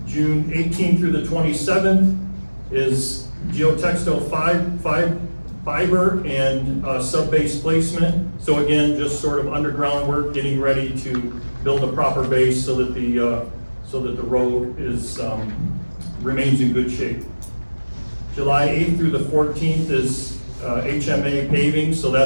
June 18th through the 27th is geotextile fiber and sub-base placement. So again, just sort of underground work, getting ready to build a proper base so that the road is remains in good shape. July 8th through the 14th is HMA paving, so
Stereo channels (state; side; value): inverted; both; correlation -1.00